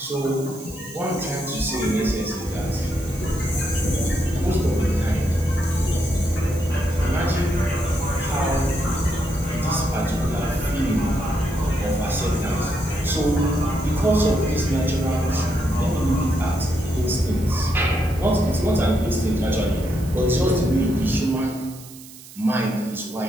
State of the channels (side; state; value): right; noise; hiss, 18 dB below the sound